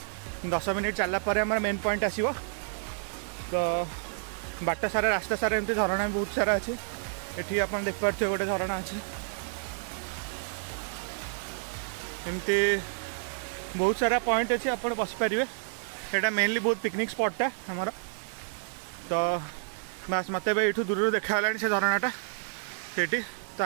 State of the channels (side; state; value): left; silent; digital silence